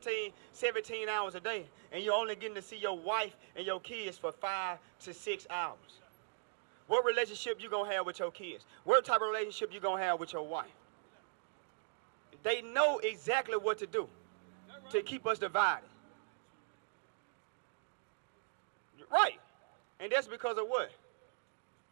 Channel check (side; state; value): left; silent; digital silence